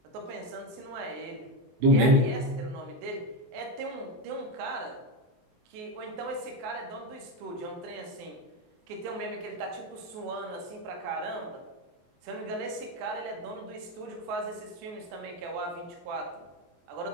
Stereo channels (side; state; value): left; late; 24 ms